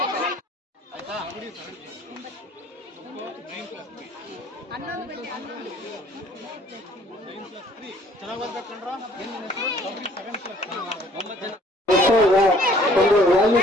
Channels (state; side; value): normal; both; correlation 0.58